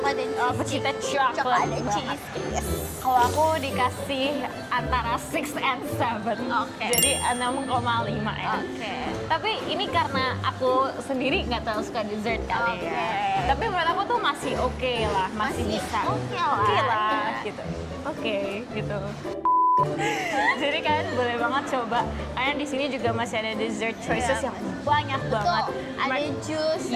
dan cheesecake. Pecinta coklat dan banget. cheesecake. Yes. Kalau aku dikasih antara 6 and 7. Oke. Jadi 6,5 ya. Oke. Tapi ini karena aku sendiri nggak terlalu suka dessert kali Oke. ya. Tapi menurut aku tuh masih oke lah, masih bisa. oke lah. Oke lah, Ya. gitu. Oke, gitu. Jadi kalian boleh banget coba. Karena di sini juga masih ada dessert choices Iya. yang banyak banget. Betul. Ada jus,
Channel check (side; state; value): both; identical; correlation 1.00